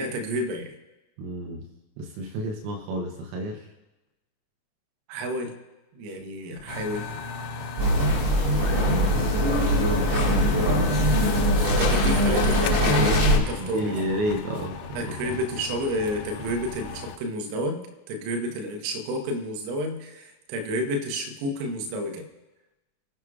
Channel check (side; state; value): left; late; 28 ms